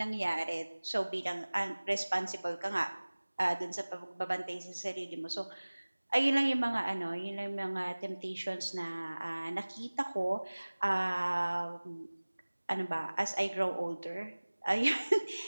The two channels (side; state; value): both; inverted; correlation -1.00